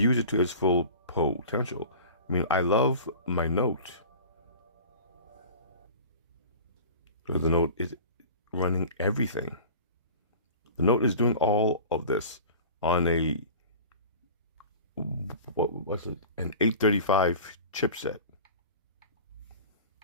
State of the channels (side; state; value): both; inverted; correlation -0.39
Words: it to its full potential. I mean, I love my Note. The Note is running everything. The Note is doing all of this on a what's it? An 835 chipset.